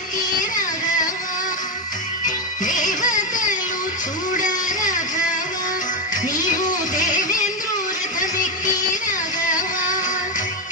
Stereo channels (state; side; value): normal; both; correlation 0.08